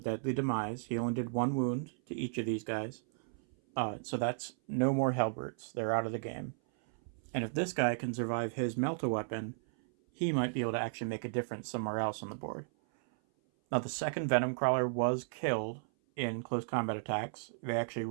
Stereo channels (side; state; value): left; silent; 55 dB below the other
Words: deadly demise. He only did 1 wound to each of these guys. So that's no more Hellbrutes. They're out of the game. And if this guy can survive his melt-a-weapon, he might be able to actually make a difference somewhere else on the board. Now, the second Venom Crawler was killed in close combat attacks. They actually